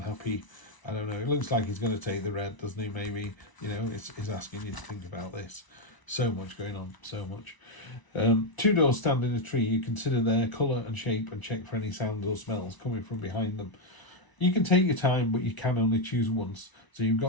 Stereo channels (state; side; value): late; right; 1.0 ms